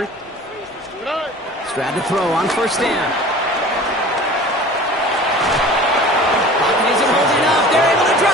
Stroud to throw on 1st down. Pocket isn't holding up. They're able to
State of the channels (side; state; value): both; normal; correlation 0.42